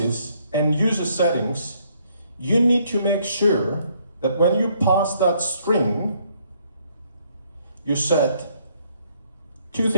and user settings, you need to make sure that when you pass that string, you set two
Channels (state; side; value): inverted; both; correlation -0.68